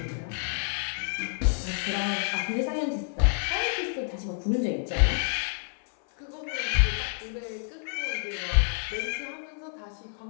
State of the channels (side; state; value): right; silent; 59 dB below the other